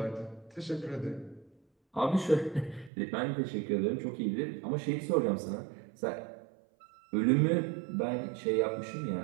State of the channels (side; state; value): left; drops out; at 2.9 s